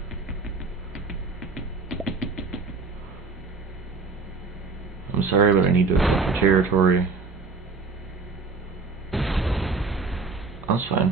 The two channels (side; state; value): left; quieter; 4.3 dB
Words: I'm sorry, but I need to accept the territory. That's